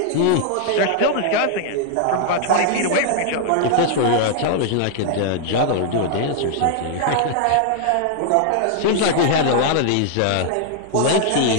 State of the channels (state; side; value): different; both; correlation 0.00